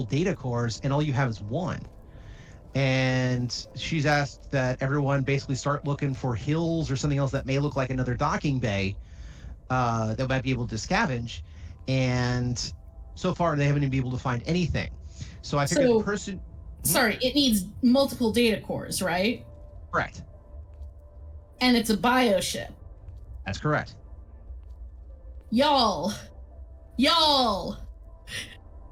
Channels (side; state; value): both; identical; correlation 1.00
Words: data cores, and all you have is one. And she's asked that everyone basically start looking for hills or something else that may look like another docking bay that might be able to scavenge, and so far they haven't even been able to find anything. So I figured the person. Sorry, it needs multiple data cores, right? Correct. And it's a bioship. That's correct. Y'all, the